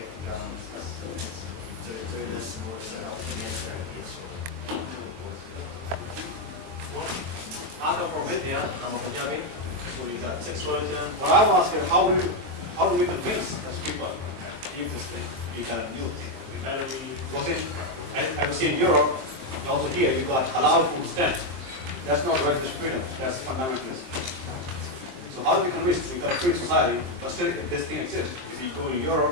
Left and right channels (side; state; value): left; late; 23 ms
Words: to go and do this in order to help you navigate it. I come from India, I'm a Punjabi, so we got 6 religions. What I was asking, how do we convince those people to leave this thing, to get a new thing? Because I was in Europe, and also here, you got halal food stand. That's not religious freedom, that's fundamentalism. So how do we convince? We've got a free society, but still this thing exists. If you go to